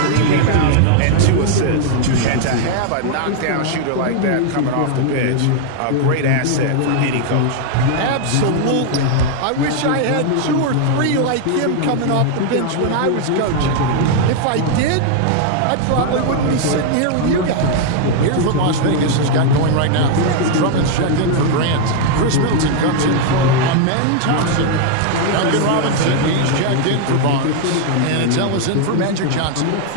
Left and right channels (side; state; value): both; different; correlation 0.00